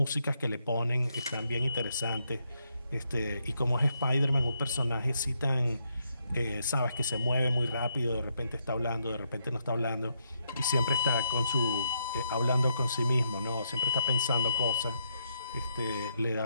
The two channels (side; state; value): both; inverted; correlation -0.78